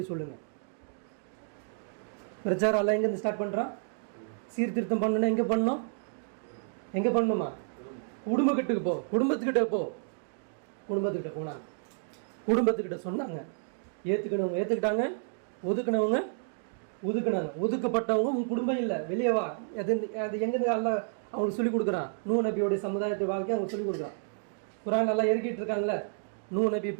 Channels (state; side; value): silent; left; digital silence